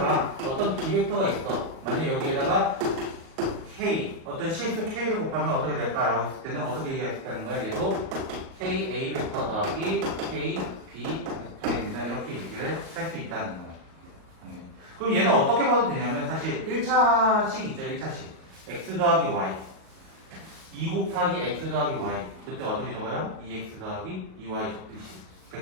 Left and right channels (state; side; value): late; left; 37 ms